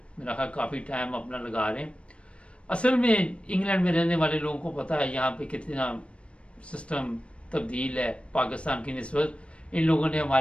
मेरा ख्याल काफ़ी टाइम अपना लगा रहे हैं। असल में इंग्लैंड में रहने वाले लोगों को पता है यहाँ पे कितना सिस्टम तब्दील है पाकिस्तान की निस्बत। इन लोगों ने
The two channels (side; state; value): right; late; 0.060 ms